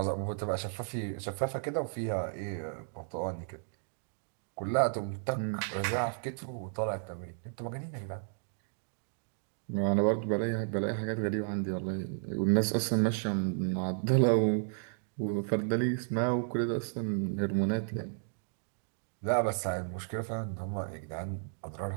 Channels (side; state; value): left; silent; digital silence